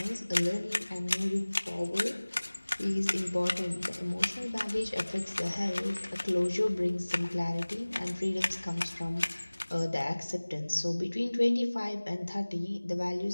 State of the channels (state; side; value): inverted; both; correlation -1.00